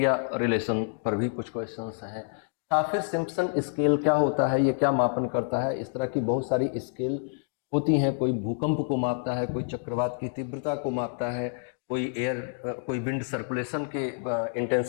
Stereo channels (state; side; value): silent; right; digital silence